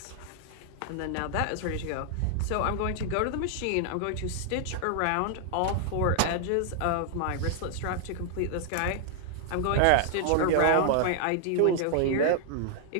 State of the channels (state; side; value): different; both; correlation -0.01